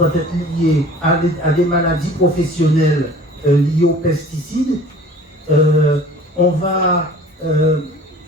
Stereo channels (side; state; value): both; normal; correlation 0.46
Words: être liée à des maladies professionnelles liées aux pesticides. On va